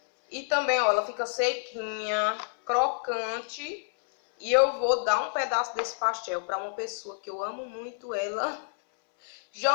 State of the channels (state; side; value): silent; right; 59 dB below the other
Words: E também, ó, ela fica sequinha, crocante. E eu vou dar um pedaço desse pastel para uma pessoa que eu amo muito ela.